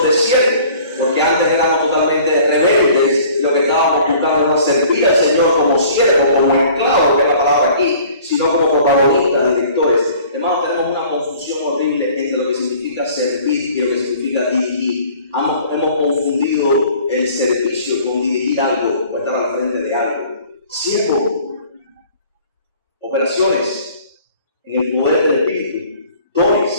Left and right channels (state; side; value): inverted; both; correlation -0.51